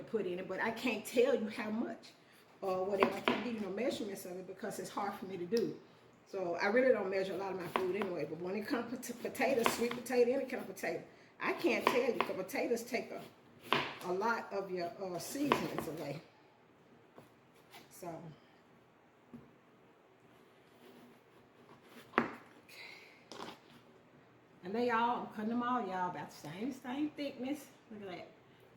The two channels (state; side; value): identical; both; correlation 1.00